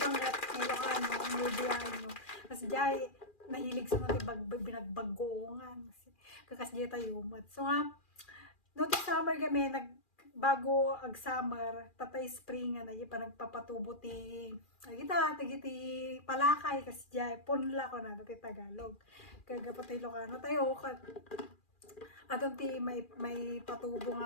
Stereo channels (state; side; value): late; right; 2.4 ms